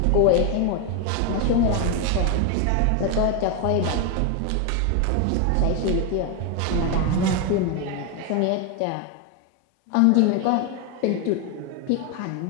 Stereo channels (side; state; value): both; different; correlation 0.01